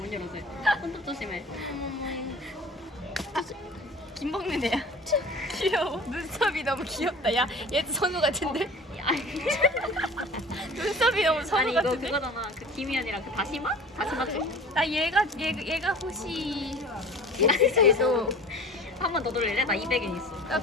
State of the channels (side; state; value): both; normal; correlation 0.41